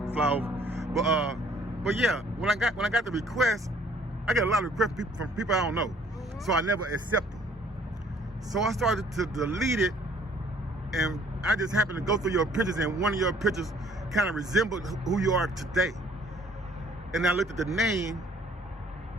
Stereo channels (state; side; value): normal; both; correlation 0.58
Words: fly over. But yeah, when I got the request, I get a lot of requests from people I don't know, so I never accept them. So I started to delete it, and I just happened to go through your pictures, and one of your pictures kind of resembled who you are today. And I looked at the name,